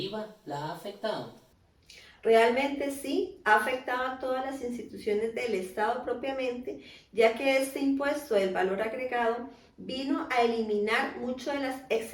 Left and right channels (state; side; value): identical; both; correlation 1.00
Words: la ha afectado? Realmente sí, ha afectado a todas las instituciones del Estado propiamente, ya que este impuesto del valor agregado vino a eliminar muchas de las